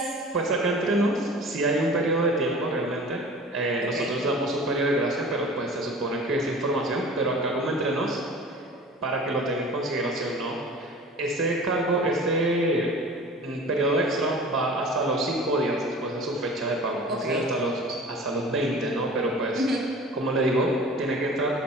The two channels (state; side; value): normal; both; correlation 0.41